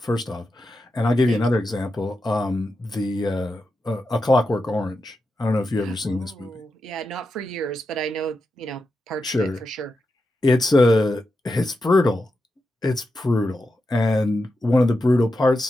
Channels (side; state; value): both; normal; correlation 0.88